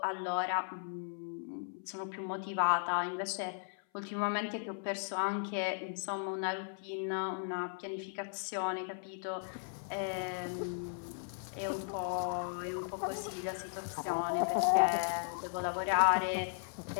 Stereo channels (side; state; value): right; silent; 53 dB below the other